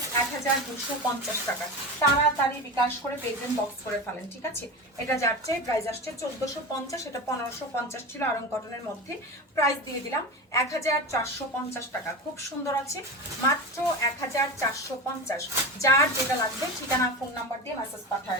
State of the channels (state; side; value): normal; both; correlation 0.25